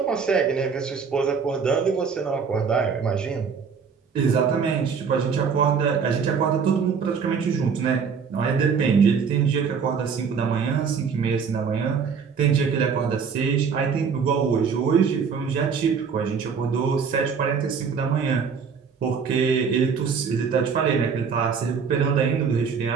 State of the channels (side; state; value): left; quieter; 6.1 dB